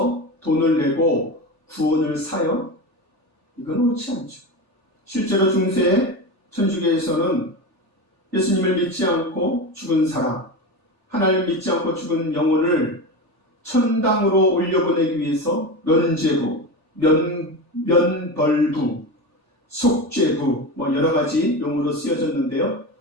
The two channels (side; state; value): left; late; 3.4 ms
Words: 돈을 내고 구원을 사요? 이건 옳지 않죠. 실제로 중세 천주교에서는 예수님을 믿지 않고 죽은 사람, 하나님을 믿지 않고 죽은 영혼을 천당으로 올려보내기 위해서 면죄부, 면벌부, 속죄부, 여러 가지 용어로 쓰여졌는데요.